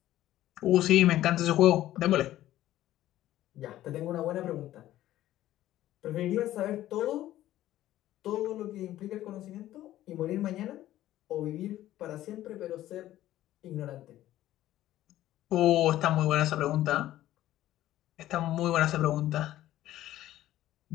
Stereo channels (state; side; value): quieter; right; 14.0 dB